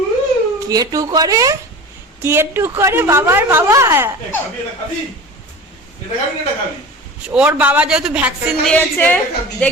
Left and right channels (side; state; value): both; normal; correlation 0.34